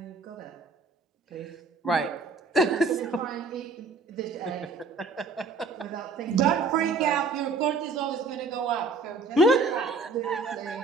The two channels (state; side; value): quieter; left; 3.9 dB